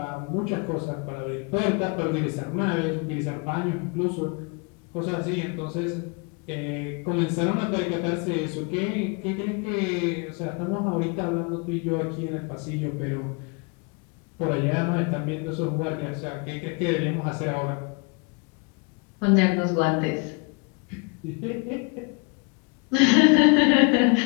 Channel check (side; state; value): right; quieter; 32.6 dB